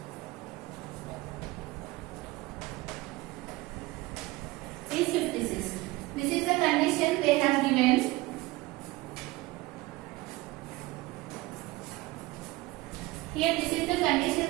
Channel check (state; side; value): quieter; left; 20.2 dB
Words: is 56. This is the condition they have given. Here this is the